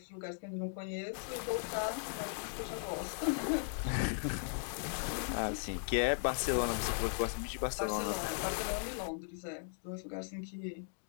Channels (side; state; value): right; silent; digital silence